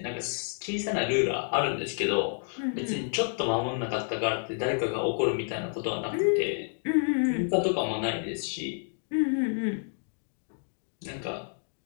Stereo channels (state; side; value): silent; right; 58 dB below the other